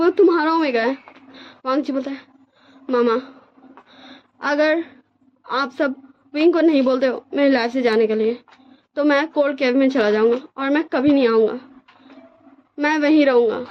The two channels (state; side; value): identical; both; correlation 1.00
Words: तुम्हारा ओमेगा है। वांग जी बोलता है मामा अगर आप सब विंग को नहीं बोलते हो मेरी लाइफ से जाने के लिए तो मैं कोल्ड केव में चला जाऊंगा और मैं कभी नहीं आऊंगा, मैं वहीं रहूंगा।